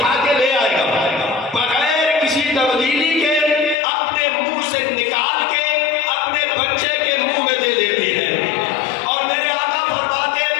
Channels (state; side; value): drops out; right; at 3.8 s